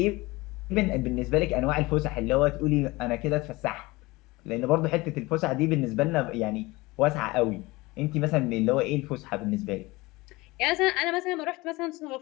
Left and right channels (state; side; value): quieter; right; 21.9 dB